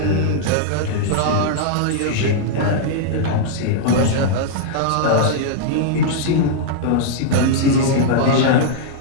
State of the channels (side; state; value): both; different; correlation -0.01